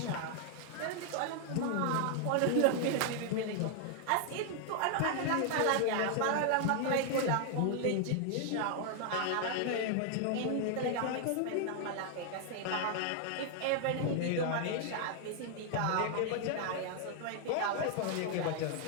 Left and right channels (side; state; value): both; different; correlation 0.00